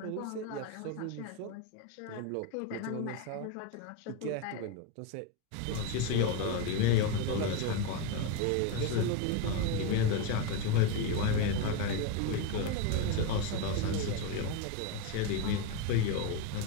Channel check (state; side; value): different; both; correlation 0.03